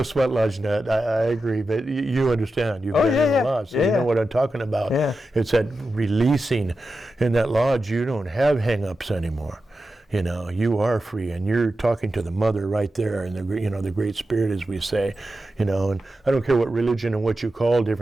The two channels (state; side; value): normal; both; correlation 0.91